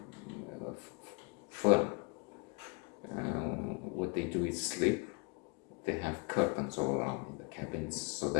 firm. What they do is sleep. They have curtains all around in the cabins so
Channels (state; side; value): quieter; right; 32.5 dB